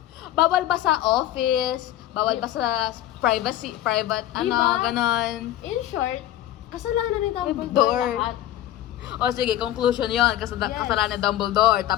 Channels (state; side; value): quieter; right; 13.2 dB